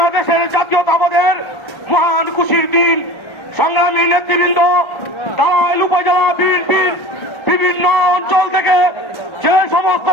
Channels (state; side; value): late; right; 1.4 ms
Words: জাতীয়তাবাদের মহান খুশির দিন। সংগ্রামী নেতৃবৃন্দ, টাঙ্গাইল উপজেলা বিএনপির বিভিন্ন অঞ্চল থেকে যে সমস্ত